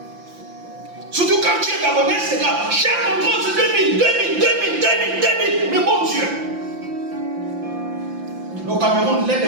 Surtout quand tu es Gabonais, c'est grave. Chaque contrôle, c'est 2000. Mais bon Dieu. Le Cameroun, l'un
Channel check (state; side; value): late; left; 5.8 ms